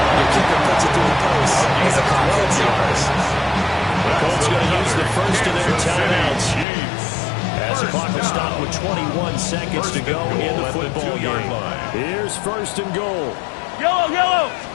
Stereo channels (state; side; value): drops out; right; at 6.7 s